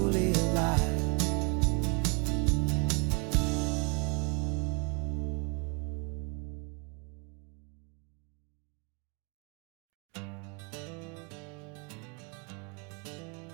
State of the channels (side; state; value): left; quieter; 33.2 dB